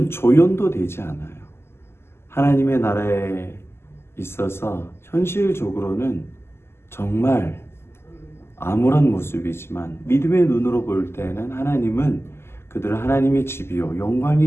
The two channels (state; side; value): late; right; 0.12 ms